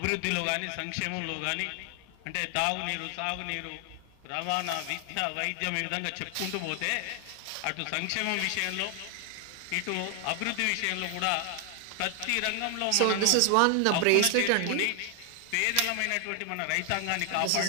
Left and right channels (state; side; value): different; both; correlation 0.00